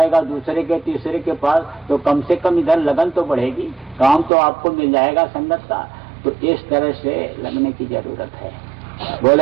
दूसरे के तीसरे के पास, तो कम से कम इधर लगन तो बढ़ेगी, काम तो आपको मिल जाएगा संगत का। तो इस तरह से लगने की जरूरत है।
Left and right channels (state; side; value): drops out; left; at 4.3 s